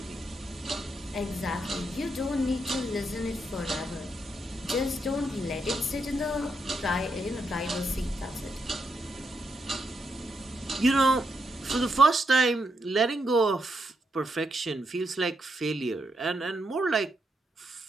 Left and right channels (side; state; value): both; normal; correlation 0.81